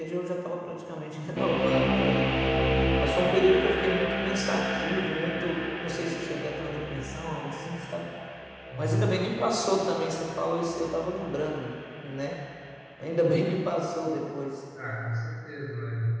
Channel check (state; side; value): identical; both; correlation 1.00